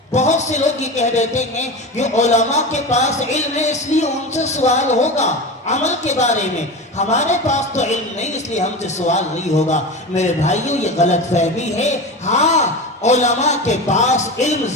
بہت سے لوگ یہ کہہ دیتے ہیں کہ علماء کے پاس علم ہے اس لیے ان سے سوال ہوگا عمل کے بارے میں، ہمارے پاس تو علم نہیں اس لیے ہم سے سوال نہیں ہوگا۔ میرے بھائیوں یہ غلط فہمی ہے، ہاں علماء کے پاس علم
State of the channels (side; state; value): both; normal; correlation 0.26